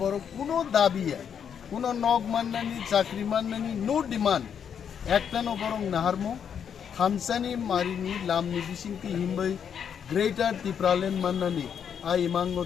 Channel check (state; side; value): quieter; right; 7.9 dB